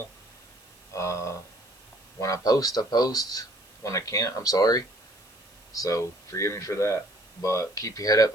Uh, when I post, I post. When I can't, I'm sorry. So forgive me for that. But keep your head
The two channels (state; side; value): noise; right; hiss, 28 dB below the sound